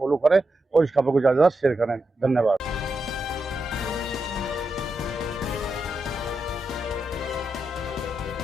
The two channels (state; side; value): normal; both; correlation 0.86